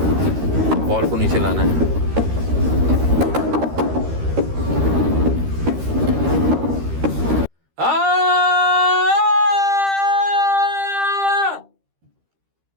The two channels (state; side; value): late; left; 13 ms